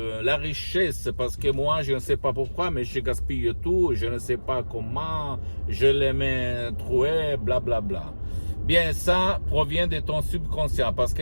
richesse, parce que moi, je ne sais pas pourquoi, mais je gaspille tout, je ne sais pas comment, je les mets troués, blablabla. Bla, bla. Bien, ça provient de ton subconscient, parce que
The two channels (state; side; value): inverted; both; correlation -1.00